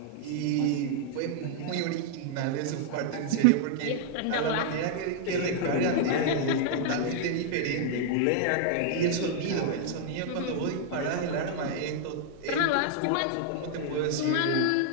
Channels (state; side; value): different; both; correlation -0.01